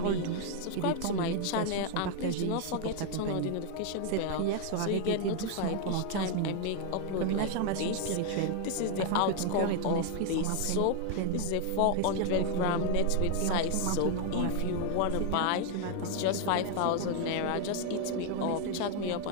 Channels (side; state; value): both; different; correlation 0.00